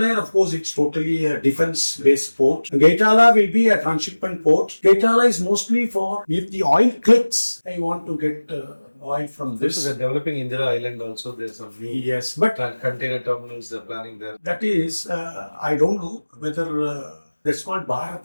of course, it's totally a defense-based port. Gaitala will be a transshipment port. Gaitala is mostly for if the oil clicks, I want to get oil from this. So they're developing Indira Island also. There's some new Yes, but container terminals they're planning there. that is, I don't know whether that's called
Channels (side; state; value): both; inverted; correlation -1.00